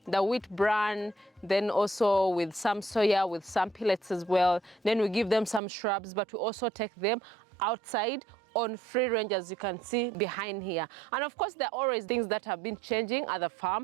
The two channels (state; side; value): drops out; left; at 5.6 s